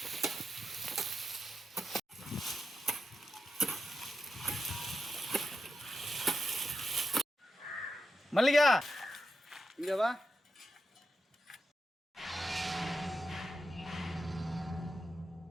மல்லிகா இங்க வா.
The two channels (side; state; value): both; normal; correlation 0.87